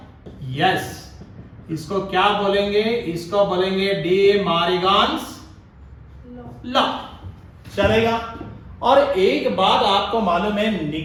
यस। इसको क्या बोलेंगे, इसको बोलेंगे डी मारिगान्स लॉ, चलेगा। और एक बात आपको मालूम है,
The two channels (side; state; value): both; identical; correlation 1.00